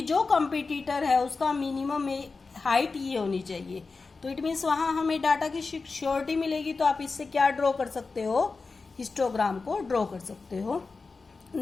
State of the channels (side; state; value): right; quieter; 4.2 dB